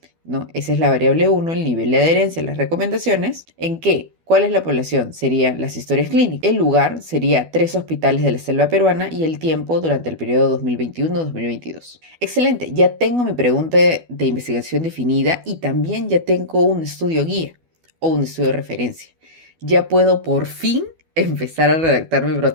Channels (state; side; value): late; left; 12 ms